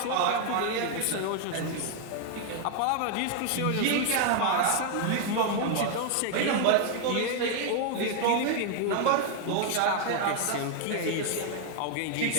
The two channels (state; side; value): different; both; correlation 0.00